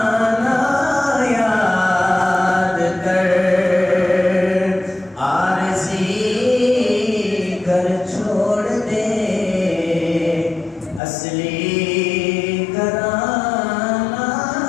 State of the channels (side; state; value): right; drops out; at 11.0 s